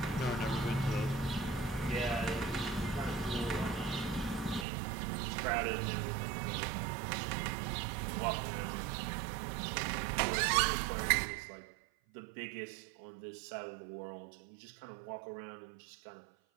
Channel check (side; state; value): left; drops out; at 4.7 s